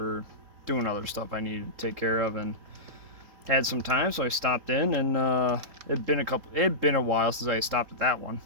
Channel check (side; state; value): left; late; 3.7 ms